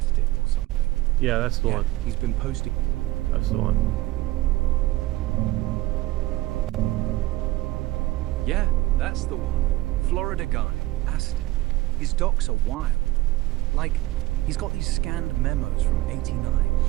or something. Yeah, that's the one. He's been posting. That's the one. Yeah, that's the one. Florida guy, Aztec. His docs are wild. Like, he's got these scanned memos from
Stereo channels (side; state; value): left; quieter; 18.0 dB